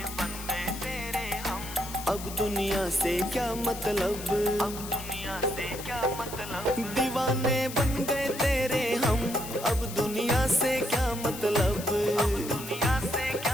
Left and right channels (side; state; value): left; noise; hiss, 11 dB below the sound